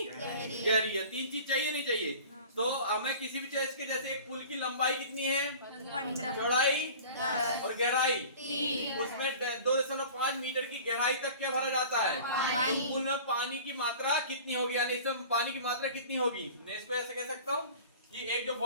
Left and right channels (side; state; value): both; inverted; correlation -0.41